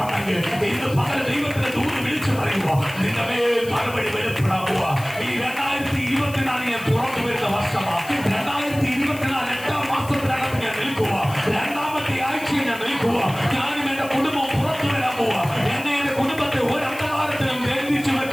ഇന്ന് പകൽ ദൈവത്തിന്റെ ദൂത് വിളിച്ചു പറയുക, നിന്റെ മേൽ മറുപടി വെളിപ്പെടാൻ പോവാ. ഈ 2024 ഞാൻ തുറന്നു വരുന്ന വർഷമാണ്. 2024 8ാം മാസത്തിനകത്ത് ഞാൻ നിൽക്കുക. 2ാമത്തെ ആഴ്ചയിൽ ഞാൻ നിൽക്കുക. ഞാനും എന്റെ കുടുംബവും പുറത്തു വരാൻ പോവാ. എന്നെ എന്റെ കുടുംബത്തെ ഒരു അന്ധകാരത്തിനും ബന്ധിച്ചു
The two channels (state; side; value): noise; left; hiss, 17 dB below the sound